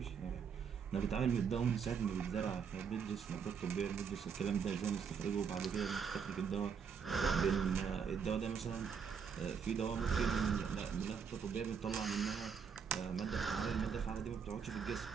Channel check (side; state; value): left; quieter; 6.6 dB